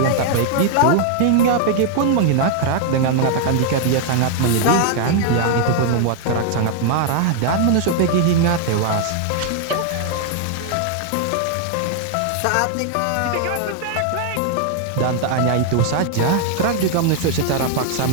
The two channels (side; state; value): both; different; correlation 0.00